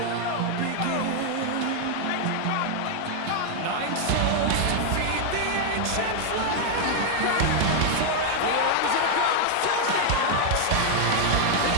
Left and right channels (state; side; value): different; both; correlation 0.00